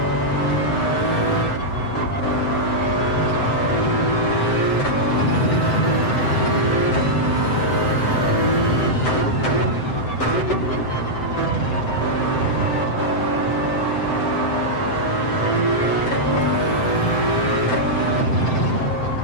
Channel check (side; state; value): right; late; 7.8 ms